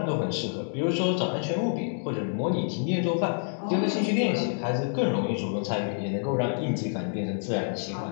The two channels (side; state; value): right; silent; digital silence